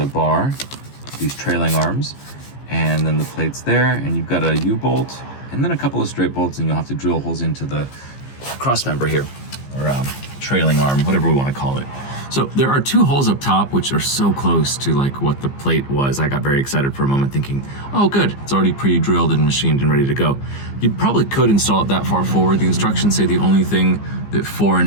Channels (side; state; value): right; late; 15 ms